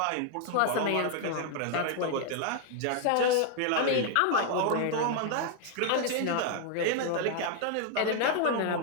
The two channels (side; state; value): both; different; correlation 0.00